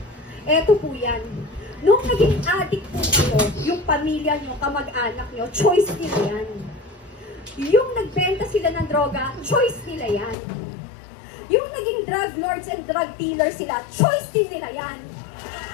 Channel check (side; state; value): right; drops out; at 10.4 s